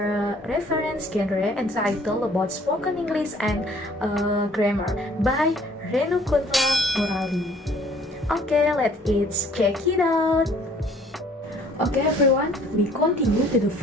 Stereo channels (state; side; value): normal; both; correlation 0.57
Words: reference genre entitled about spoken English and grammar by Renukuntla Murali. Okay, let's check it out. Okay everyone, we continue to the